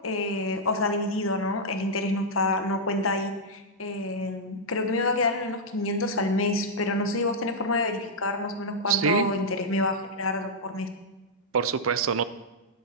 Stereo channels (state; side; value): normal; both; correlation -0.06